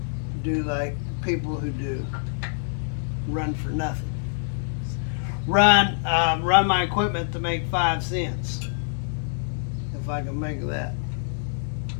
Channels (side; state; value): right; silent; digital silence